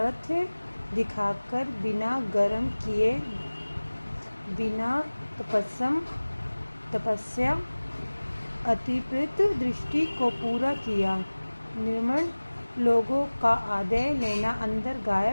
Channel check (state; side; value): inverted; both; correlation -1.00